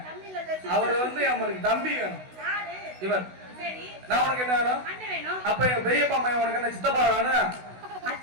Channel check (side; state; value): left; late; 16 ms